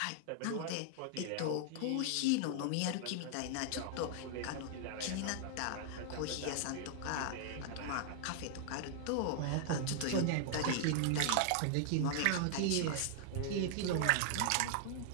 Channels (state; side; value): different; both; correlation 0.00